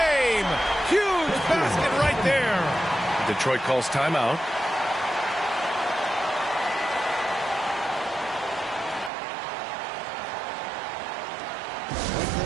Basket right there. Detroit calls timeout. Put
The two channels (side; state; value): left; drops out; at 9.1 s